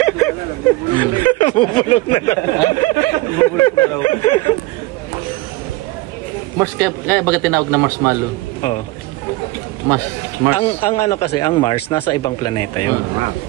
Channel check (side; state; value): left; quieter; 20.1 dB